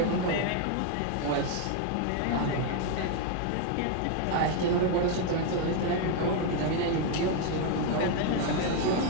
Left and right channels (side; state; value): both; different; correlation 0.01